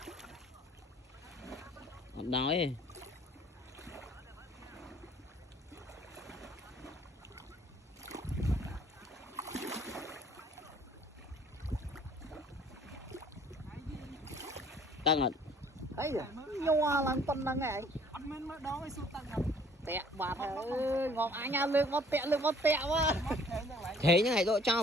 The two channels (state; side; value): normal; both; correlation 0.57